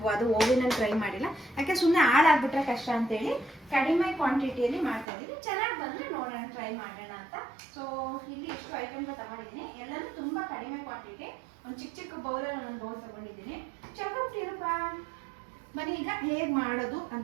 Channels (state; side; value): drops out; left; at 5.1 s